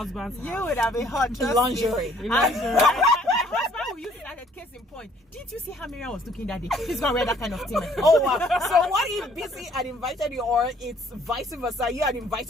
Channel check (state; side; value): normal; both; correlation 0.61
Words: house. You would have been hot. Lingerie. My husband will use it as a case in point. Didn't you see how Mariam was looking that day? He's gonna wear that kind of thing. Oh wow. So what if Beecee had invited you, or it's vice versa? You had